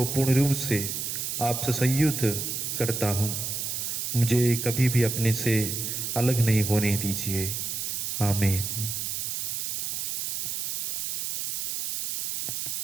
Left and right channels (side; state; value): right; noise; hiss, 2 dB below the sound